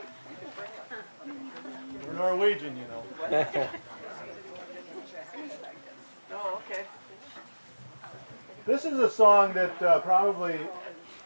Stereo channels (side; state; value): both; inverted; correlation -1.00